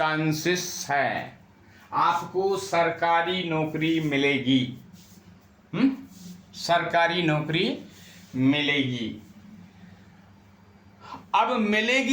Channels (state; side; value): identical; both; correlation 1.00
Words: है, आपको सरकारी नौकरी मिलेगी। सरकारी नौकरी मिलेगी। अब